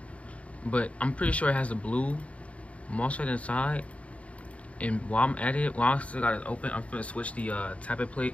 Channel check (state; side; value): late; right; 0.065 ms